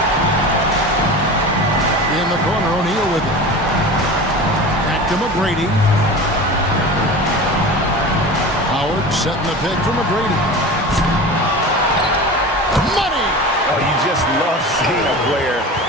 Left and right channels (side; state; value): both; normal; correlation 0.33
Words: In the corner, O'Neal with it. Back to McGrady. Howard setting the pick for McGrady. Money! Oh, you just love seeing a player